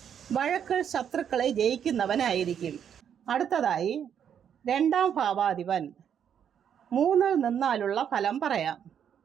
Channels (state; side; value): quieter; left; 8.6 dB